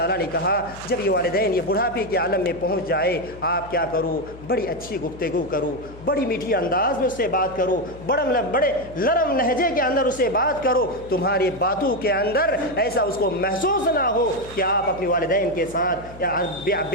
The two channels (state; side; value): noise; left; hum, 17 dB below the sound